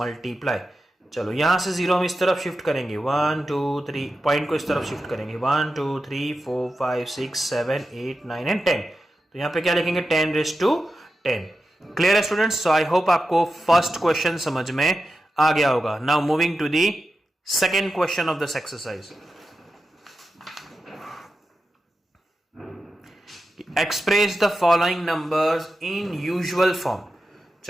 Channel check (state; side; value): normal; both; correlation 0.91